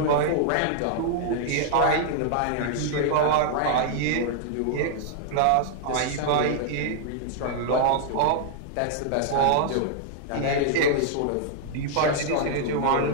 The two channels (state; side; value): different; both; correlation -0.01